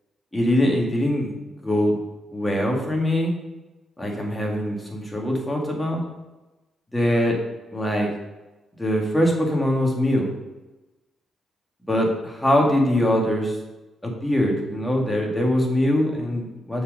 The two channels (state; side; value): normal; both; correlation 0.84